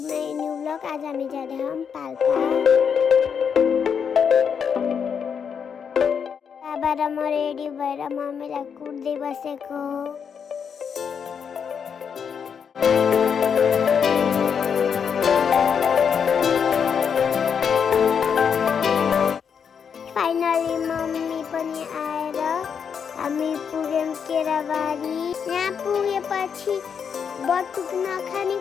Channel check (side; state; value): right; quieter; 7.0 dB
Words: new blog. आज हामी जाँदै हम पाल्पा। बाबा र म रेडी भएर मम्मीलाई कुट्दै बसेको। फाइनली मम्मी पनि आएर हामी पुग्यौं केराबारी। यहाँ पुगेपछि बटुक नखाने